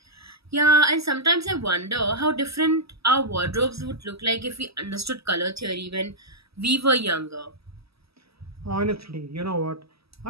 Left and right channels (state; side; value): late; left; 0.77 ms